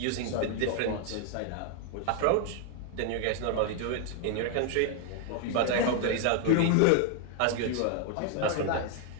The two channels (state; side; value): different; both; correlation 0.00